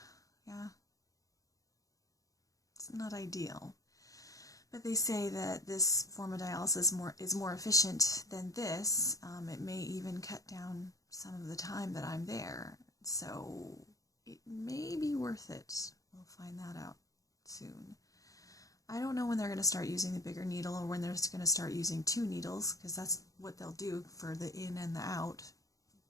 Yeah. It's not ideal. But they say that this form of dialysis is more efficient than this. It may even cut down some of the time that I'm there. So it may be worth it. We'll find that out soon. I don't know when they're going to start using the bigger needle or when they're going to start using 2 needles, because that's what they'll do for the in and the out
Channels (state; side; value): late; right; 0.17 ms